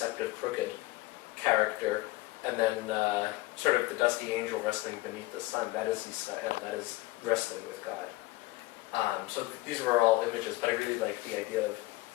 crooked character. And then sort of the dusty angel wrestling beneath the sun, that is Yisrael, that is wrestling with God. So these were all images, but I really like the idea of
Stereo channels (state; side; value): quieter; right; 20.0 dB